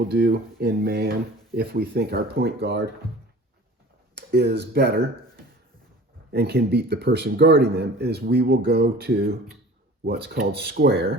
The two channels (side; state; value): both; normal; correlation 0.43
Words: do in man, if we think our point guard is better and can beat the person guarding them, is we will go to what's called